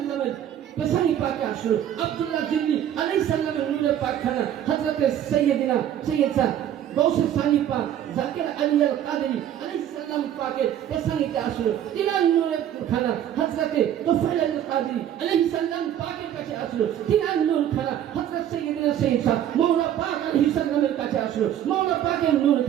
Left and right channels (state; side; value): quieter; left; 10.7 dB